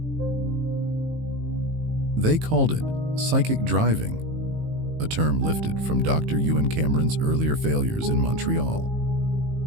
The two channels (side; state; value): left; late; 19 ms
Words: They called it psychic driving, a term lifted from Dr. Ewan Cameron's earlier failures in Montreal.